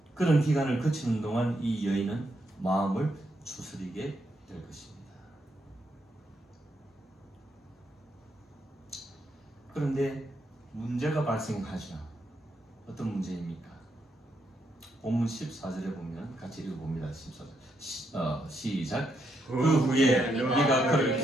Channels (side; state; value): both; normal; correlation 0.79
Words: 그런 기간을 거치는 동안 이 여인은 마음을 추스리게 될 것입니다. 그런데 문제가 발생하죠. 어떤 문제입니까? 본문 14절에 보면 같이 읽어봅니다. 14절 시작. 그 후에 네가 그를